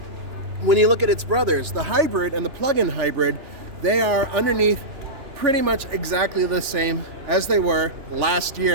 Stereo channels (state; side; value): late; left; 2.9 ms